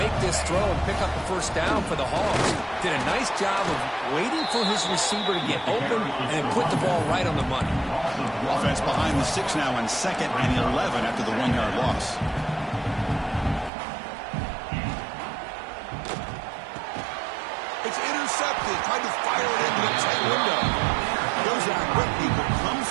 this throw and pick up the first down for the Hogs. Did a nice job of waiting for his receiver to get open and put the ball right on the money. Offense behind the 6 now on 2nd and 11 after the 1-yard loss. It's intercepted. Tried to fire it into the tight window. Goes out quickly, but comes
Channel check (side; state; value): left; drops out; at 13.7 s